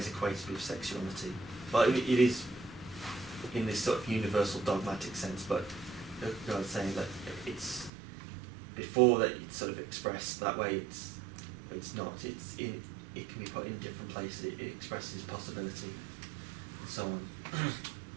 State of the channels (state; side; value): drops out; left; at 7.9 s